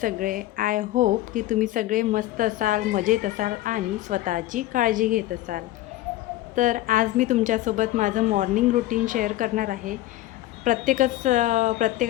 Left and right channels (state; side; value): quieter; right; 15.6 dB